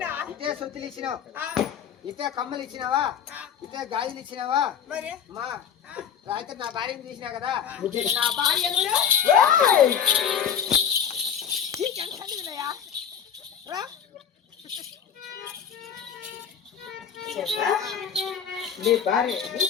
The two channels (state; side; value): quieter; right; 8.0 dB